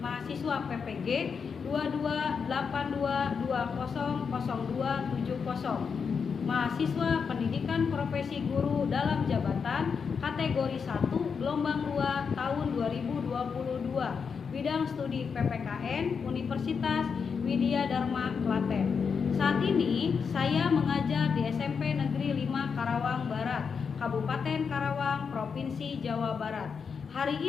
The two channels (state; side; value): quieter; right; 6.0 dB